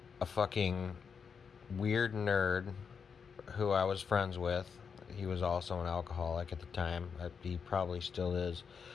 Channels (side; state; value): right; quieter; 6.2 dB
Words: a fucking weird nerd who I was friends with. He was also an alcoholic at the time. He probably still is.